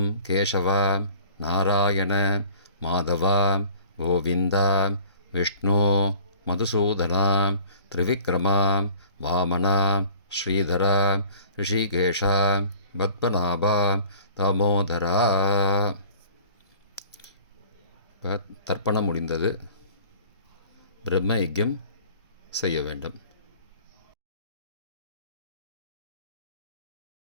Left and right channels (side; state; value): both; inverted; correlation -0.48